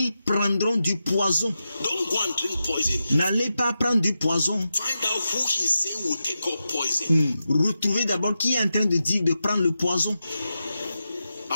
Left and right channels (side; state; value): both; inverted; correlation -0.90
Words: prendront du poison. Don't go and drink poison. N'allez pas prendre du poison. Find out who he's saying will take up poison. Retrouvez d'abord qui est en train de dire de prendre le poison.